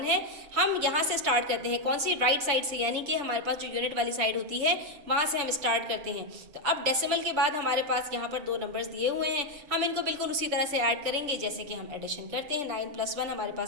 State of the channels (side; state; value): left; late; 6.9 ms